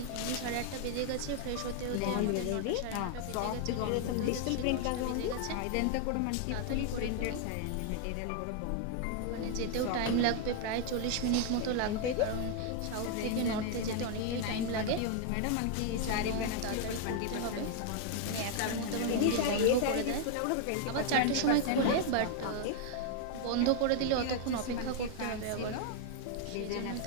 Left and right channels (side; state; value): both; different; correlation 0.00